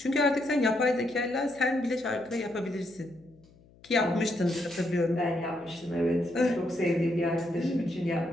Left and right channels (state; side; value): noise; left; hum, 27 dB below the sound